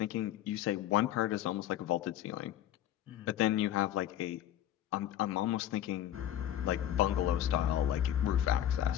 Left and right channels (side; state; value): right; quieter; 11.8 dB